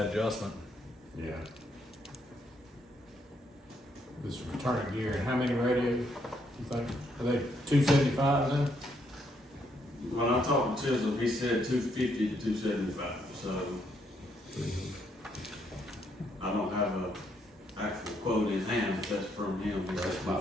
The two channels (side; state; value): both; normal; correlation 0.73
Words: adjustment. Yeah. This return gear, and how many radios, you think? Are they 275 then? When I talked to Chisholm, he said 250 to 275, so I don't have a actual quote in hand, but that's from him, he said